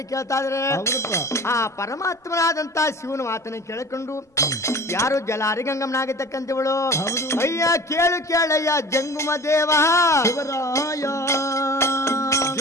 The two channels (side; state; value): both; normal; correlation 0.40